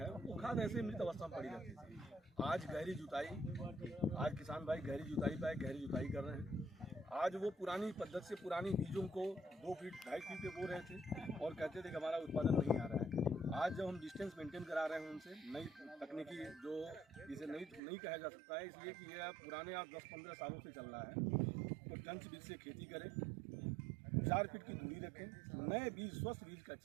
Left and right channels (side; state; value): left; drops out; at 17.8 s